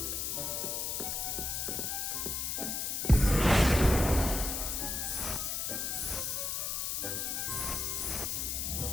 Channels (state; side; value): noise; left; hiss, 1 dB below the sound